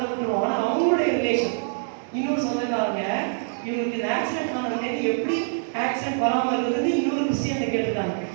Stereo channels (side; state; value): left; silent; digital silence